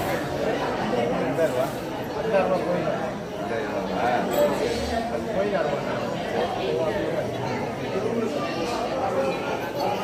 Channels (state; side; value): identical; both; correlation 1.00